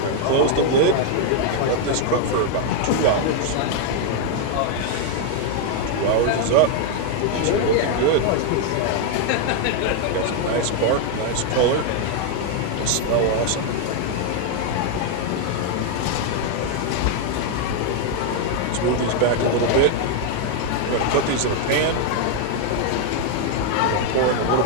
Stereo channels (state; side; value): different; both; correlation 0.00